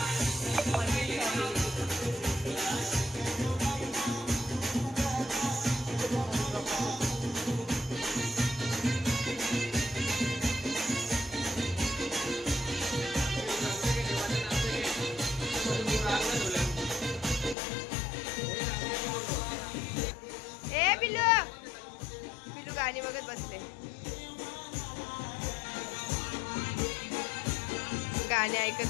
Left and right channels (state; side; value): drops out; right; at 17.6 s